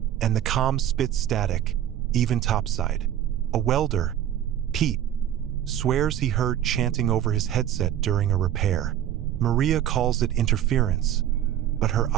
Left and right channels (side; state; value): left; quieter; 11.2 dB